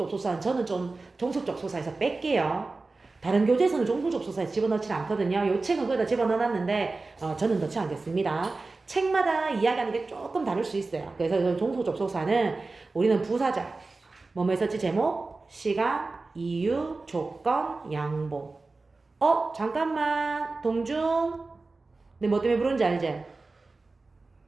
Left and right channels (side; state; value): left; quieter; 3.6 dB